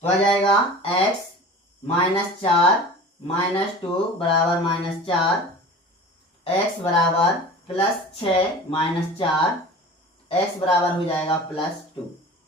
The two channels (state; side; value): normal; both; correlation 0.38